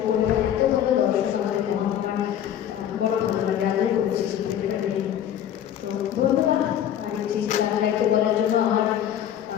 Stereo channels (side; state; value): right; quieter; 10.3 dB